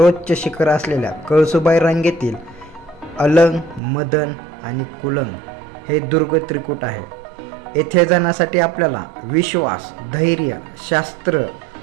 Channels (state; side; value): drops out; left; at 3.8 s